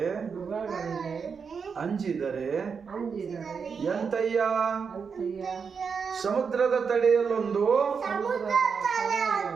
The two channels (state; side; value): quieter; left; 5.9 dB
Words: ಅಂಜಿದರೆ ಎಂತಯ್ಯ. ಸಮುದ್ರದ ತಡೆಯಲ್ಲೊಂದು